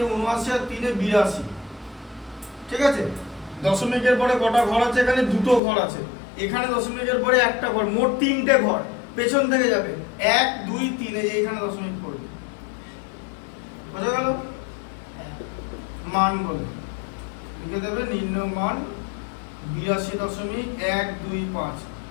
79 আর 3 এ 82, ঠিক আছে? দশমিকের পরে কটা ঘর আছে? এখানে দুটো ঘর আছে। এখানে দশমিকের পরে একটা ঘর, মোট 3টে ঘর। পেছন থেকে যাবে 1 2 3, এই যে এখানে দশমিক পড়বে। বোঝা গেল? মান বলে লিখে দেবে নির্ণয় মান 82.125।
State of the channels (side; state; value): right; drops out; at 5.6 s